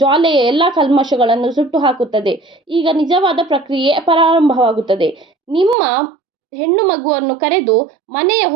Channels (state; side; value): drops out; left; at 5.8 s